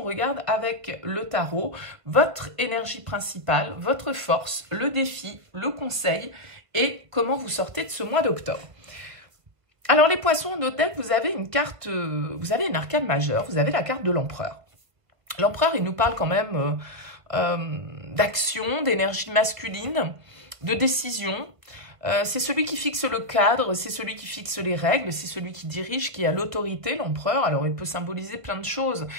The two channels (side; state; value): left; late; 1.5 ms